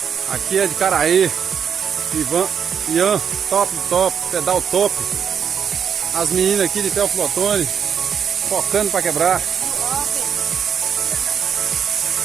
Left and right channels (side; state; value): left; quieter; 7.6 dB